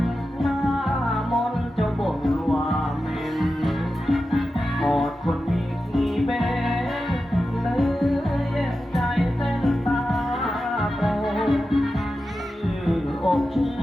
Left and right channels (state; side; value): normal; both; correlation 0.92